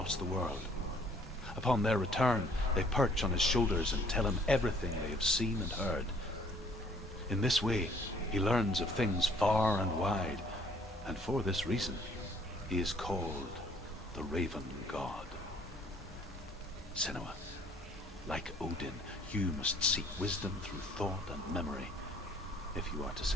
the world. Upon their return, they perch on his shoulders and tell him everything they have seen and heard. In this way, he learns of things far and wide, and for this reason, he is called the Raven God. Senua, like Odin, you must seek wisdom through thought and memory if you are to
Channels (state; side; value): normal; both; correlation 0.60